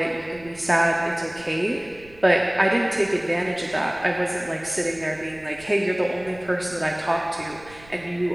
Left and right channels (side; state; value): right; noise; rumble, 23 dB below the sound